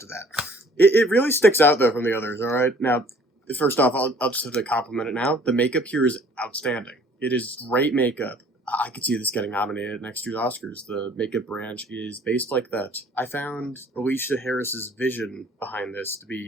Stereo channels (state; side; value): normal; both; correlation 0.55